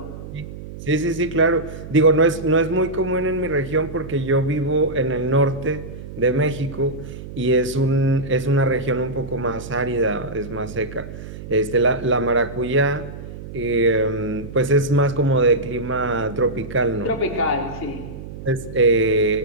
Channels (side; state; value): right; noise; hum, 12 dB below the sound